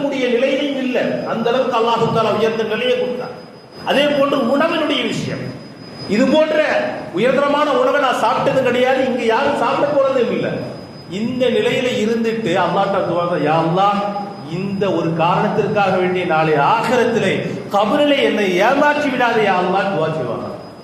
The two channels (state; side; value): identical; both; correlation 1.00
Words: நிலையிலும் இல்லை. அந்த அளவுக்கு அல்லாஹ் தஆலா உயர்ந்த நிலையை கொடுத்தார். அதே போன்று உணவினுடைய விஷயம், இது போன்ற உயர்தரமான உணவை நான் சாப்பிட்டது கிடையாது, இங்க யாரும் சாப்பிட போறதும் இல்லை. இந்த நிலையில இருந்துட்டு அல்லாஹ்ட்ட துஆ, யா அல்லாஹ், இந்த ஒரு காரணத்திற்காக வேண்டிய நாளை ஆகிரத்திலே கபரிலே என்னை ஏமாற்றி விடாதே யா அல்லாஹ் துஆ செய்வாங்க.